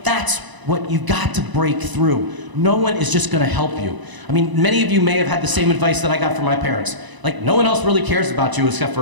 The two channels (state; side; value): late; left; 1.0 ms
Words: that's what you've got to break through. No one is just going to help you. I mean, many of you may have had the same advice that I got from my parents. Like, no one else really cares about you except